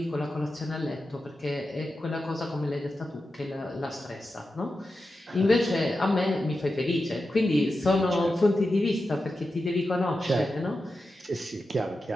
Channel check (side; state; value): both; normal; correlation 0.91